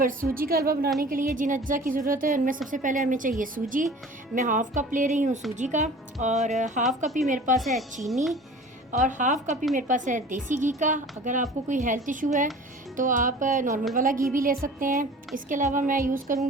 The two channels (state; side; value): normal; both; correlation 0.43